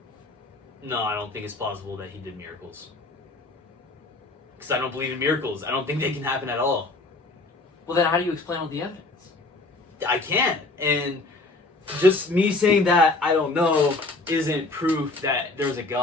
No, I don't think it's plausible that he did miracles. Because I don't believe in miracles. I don't think they can happen at all. Well, then how do you explain all the evidence? I can't. And just me saying that I don't know isn't proof that there's a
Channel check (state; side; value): quieter; right; 3.2 dB